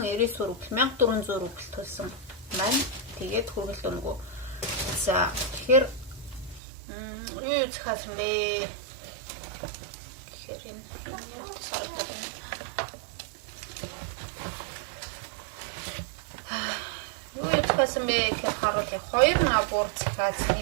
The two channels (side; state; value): left; drops out; at 6.6 s